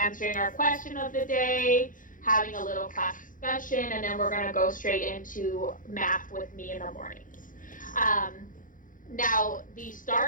our question of the day, having a little class discussion, and then we're going to go straight into math with me in the mornings. Now, the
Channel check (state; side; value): late; right; 0.39 ms